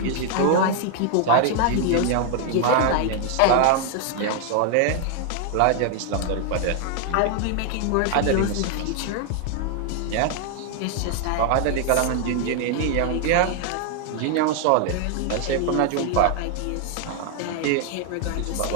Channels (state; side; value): different; both; correlation 0.00